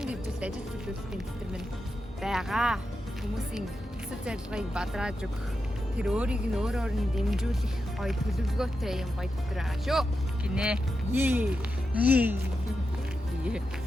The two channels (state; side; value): normal; both; correlation 0.88